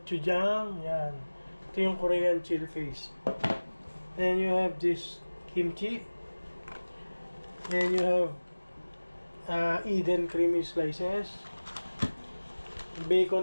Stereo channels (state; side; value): inverted; both; correlation -1.00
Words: Yan. Ito yung Korean chili paste. Then, you have this kimchi. Then, you have Eden creamy slices.